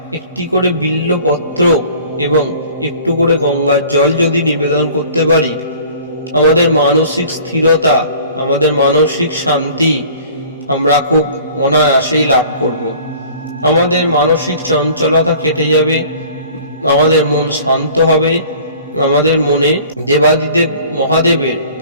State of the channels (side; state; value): both; inverted; correlation -0.48